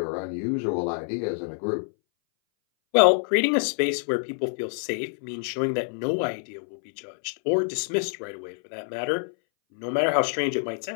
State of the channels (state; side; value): silent; right; 60 dB below the other